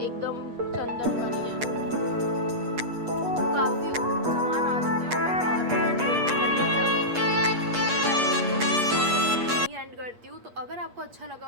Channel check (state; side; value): late; left; 8.4 ms